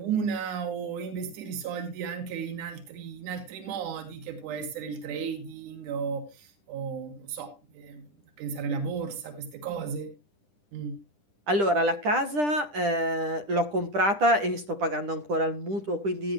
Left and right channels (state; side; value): late; left; 10 ms